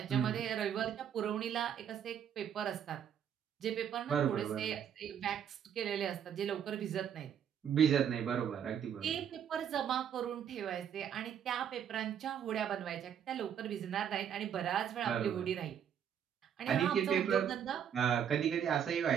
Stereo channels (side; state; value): left; quieter; 8.8 dB